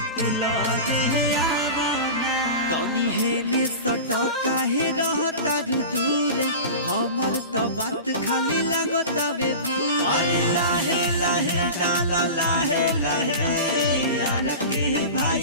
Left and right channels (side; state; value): both; inverted; correlation -0.31